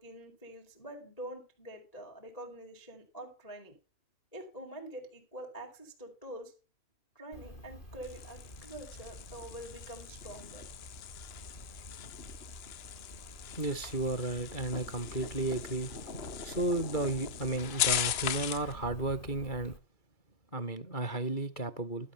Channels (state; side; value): late; right; 2.9 ms